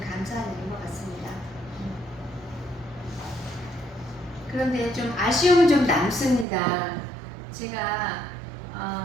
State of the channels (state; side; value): drops out; left; at 6.5 s